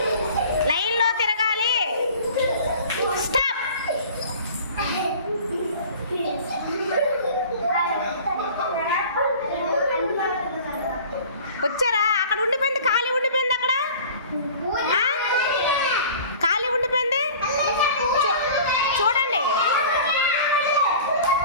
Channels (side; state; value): both; inverted; correlation -0.44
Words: లైన్లో తిరగాలి. స్టాప్. వచ్చారా? అక్కడ ఉండిపోయింది, ఖాళీ ఉండిపోయింది, అక్కడ ఖాళీ ఉండిపోయింది. చూడండి,